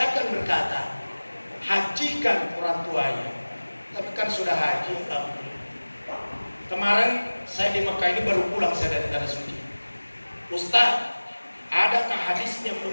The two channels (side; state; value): both; inverted; correlation -1.00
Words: akan berkata, hajikan orang tuanya. Tapi kan sudah haji, alhamdulillah. Kemarin saya di Mekah ini baru pulang saya dari Tanah Suci. Ustaz, adakah hadisnya